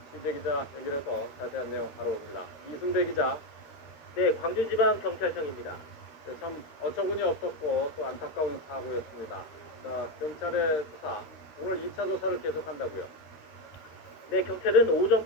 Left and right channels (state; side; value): late; right; 13 ms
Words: 취재기자 연결해서 자세한 내용 바로옵니다. 이승대 기자. 네, 광주지방경찰청입니다. 네, 참 어처구니 없었고 또 안타까운 사고였습니다. 자, 경찰의 수사, 오늘 2차 조사를 계속한다고요? 네, 경찰은